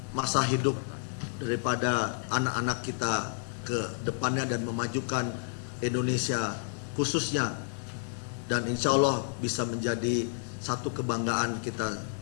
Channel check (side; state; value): right; silent; 57 dB below the other